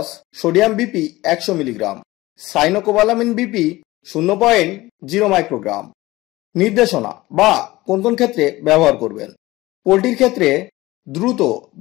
sodium BP 100 milligram, cyanocobalamin BP 0.0 microgram. নির্দেশনা বা কোন কোন ক্ষেত্রে ব্যবহার করবেন: পোলট্রির ক্ষেত্রে দ্রুত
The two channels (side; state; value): right; quieter; 18.9 dB